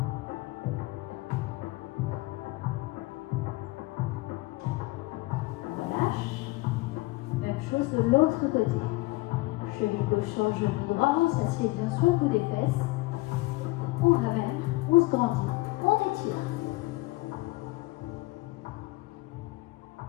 De l'autre côté. Cheville gauche sur le genou droit, on s'assied bien sur le bout des fesses. On ramène, on se grandit, on étire.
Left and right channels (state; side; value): quieter; right; 21.6 dB